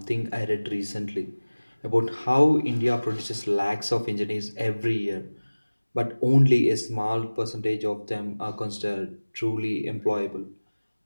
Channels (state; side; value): inverted; both; correlation -1.00